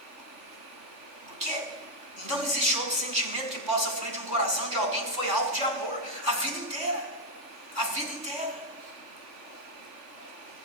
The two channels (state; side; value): late; left; 3.5 ms